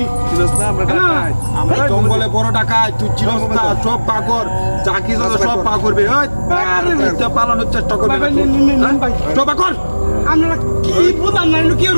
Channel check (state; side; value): inverted; both; correlation -1.00